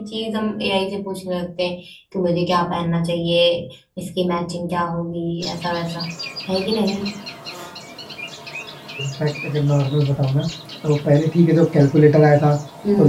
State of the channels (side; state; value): both; identical; correlation 1.00